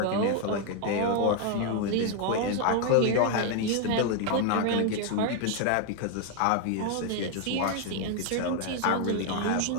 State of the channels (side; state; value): both; different; correlation 0.01